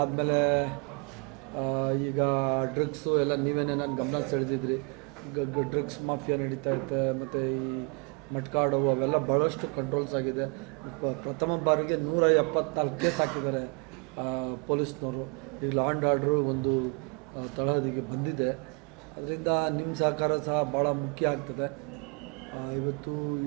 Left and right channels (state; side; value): quieter; left; 34.2 dB